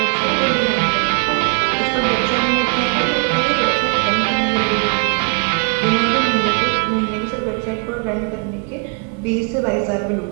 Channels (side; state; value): left; quieter; 36.7 dB